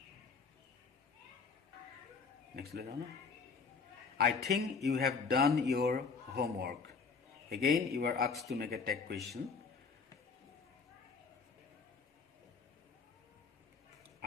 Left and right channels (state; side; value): quieter; right; 5.1 dB